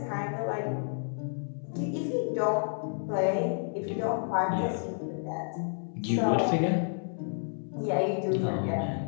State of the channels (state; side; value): silent; right; 58 dB below the other